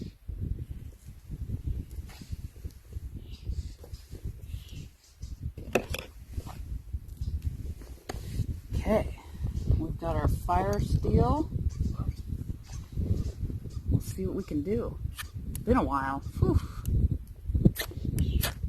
Okay, we've got our fire steel. We'll see what we can do. It's been a while. Whew.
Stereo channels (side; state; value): both; identical; correlation 1.00